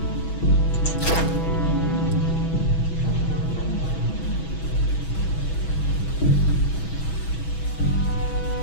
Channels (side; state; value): right; late; 6.1 ms